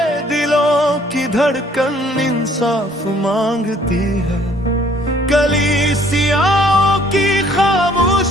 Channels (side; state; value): both; normal; correlation 0.60